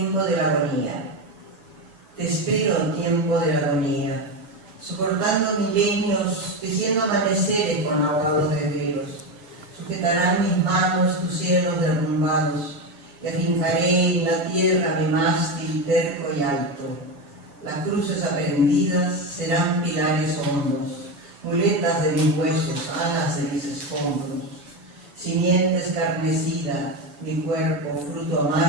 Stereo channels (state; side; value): late; left; 7.0 ms